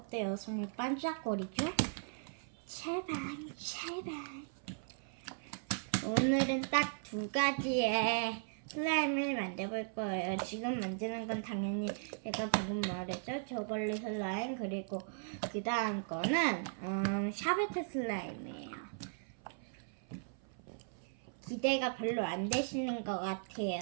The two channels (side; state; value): left; silent; 53 dB below the other